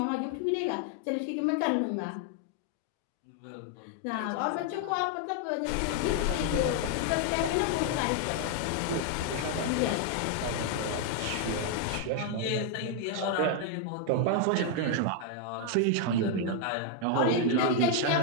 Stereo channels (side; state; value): both; different; correlation 0.00